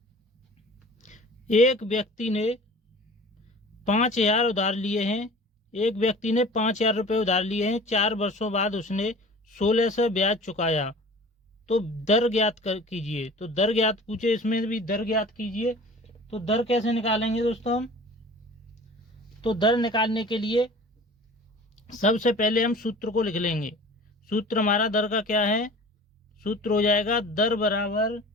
एक व्यक्ति ने 5,000 उधार लिए हैं, एक व्यक्ति ने 5,000 रुपये उधार लिए हैं। 4 वर्षों बाद उसने 1600 ब्याज चुकाया, तो दर ज्ञात कीजिए। तो दर ज्ञात पूछे, इसमें भी दर ज्ञात कीजिए। तो दर कैसे निकालेंगे दोस्तों हम, तो दर निकालने के लिए सबसे पहले हम सूत्र को लिख लेंगे। सूत्र हमारा दर का क्या है, सूत्र हो जाएगा दर बराबर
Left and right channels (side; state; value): both; normal; correlation 0.42